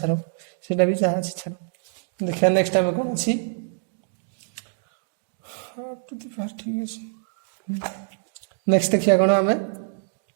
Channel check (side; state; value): left; silent; digital silence